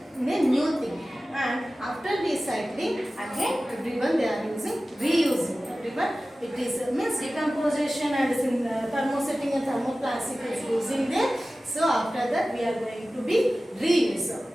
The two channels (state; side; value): normal; both; correlation 0.96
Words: in a new thing. And after recycling, again everyone they are using reusing. Everyone it is means decomposition and thermosetting and thermoplastic is using there. So after that we are going to be reuse.